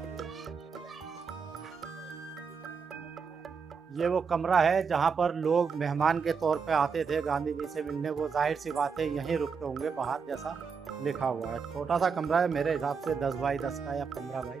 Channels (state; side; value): quieter; left; 5.7 dB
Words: ये वो कमरा है जहाँ पर लोग मेहमान के तौर पे आते थे गांधी जी से मिलने। वो जाहिर सी बात है यहीं रुकते होंगे बाहर, जैसा लिखा हुआ है। छोटा सा कमरा है, मेरे हिसाब से 10 बाई 10 का या 15 बाई